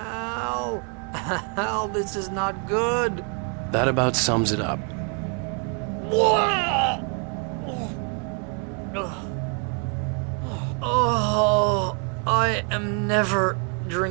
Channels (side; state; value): left; quieter; 39.4 dB